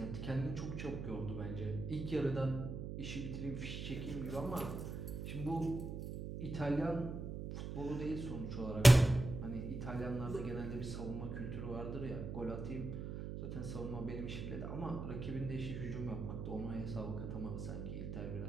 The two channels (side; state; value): right; noise; hum, 5 dB below the sound